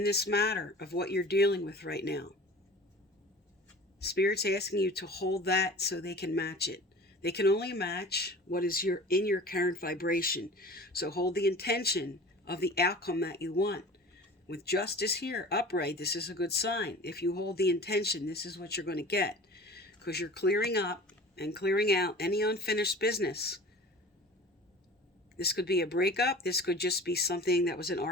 this matter of what you're dealing with right now, Spirit's asking you to hold that so they can match it. They can only match what is in your current vibration. So hold the intention of the outcome that you want. With Justice here, upright, this is a good sign. If you hold the intention, this is what you're going to get. Because you're clearing up and clearing out any unfinished business. This could be a breakup. This could just be something that was an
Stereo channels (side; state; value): both; normal; correlation 0.40